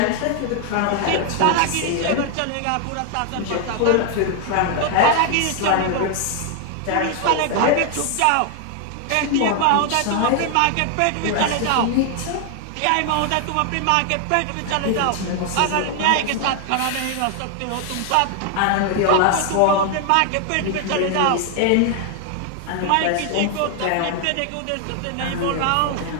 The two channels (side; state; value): both; different; correlation 0.00